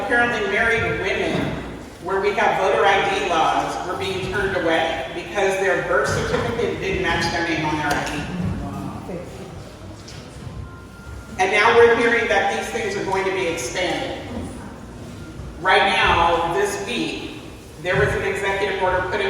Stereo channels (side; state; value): both; identical; correlation 1.00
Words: married women, where we have voter ID laws, were being turned away because their birth certificate didn't match their name on their ID. And now we're hearing that these things are going to be expanded. Right now, this week, there was an executive order put